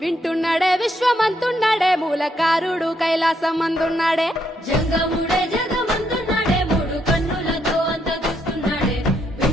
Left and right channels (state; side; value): normal; both; correlation 0.76